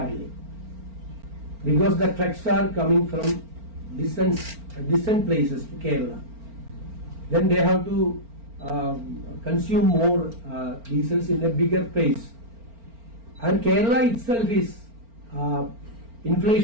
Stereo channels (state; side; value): late; left; 4.4 ms